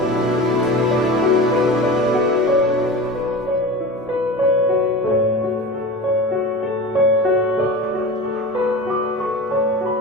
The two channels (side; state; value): both; normal; correlation 0.32